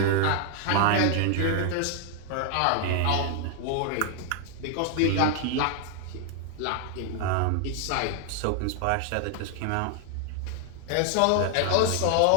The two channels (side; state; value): both; different; correlation 0.00